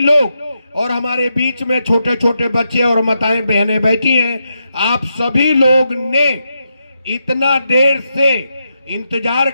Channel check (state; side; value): inverted; both; correlation -0.84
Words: और हमारे बीच में छोटे छोटे बच्चे और माताएं बहनें बैठी हैं। आप सभी लोग ने इतना देर से इंतजार